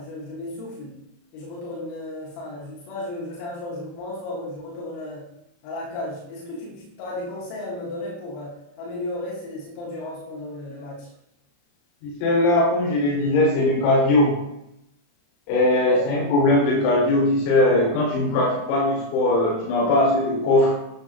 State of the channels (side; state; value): right; late; 35 ms